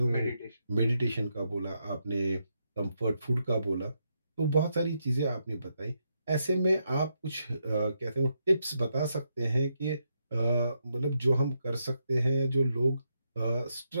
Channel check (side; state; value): both; inverted; correlation -0.81